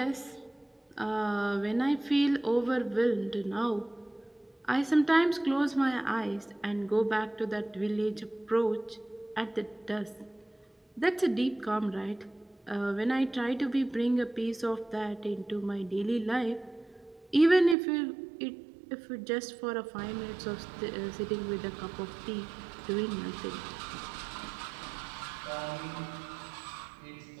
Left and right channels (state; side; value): drops out; left; at 17.8 s